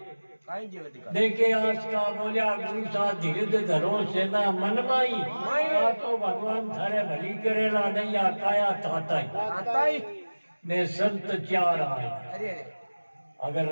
देखे आज का बोलिया गुरु सा धीरे धरो सेना मन माई तो भगवान थारे भली करेला नहीं काया ताता ही मैं संत चार आए अगर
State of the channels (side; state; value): both; inverted; correlation -1.00